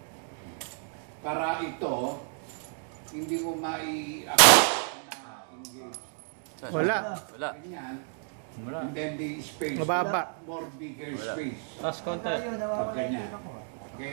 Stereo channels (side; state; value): left; silent; 58 dB below the other